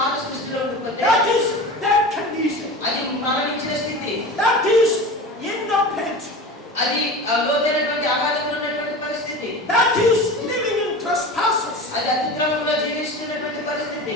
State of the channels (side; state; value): both; normal; correlation 0.32